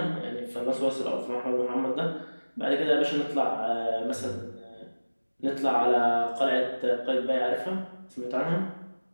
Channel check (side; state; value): both; inverted; correlation -1.00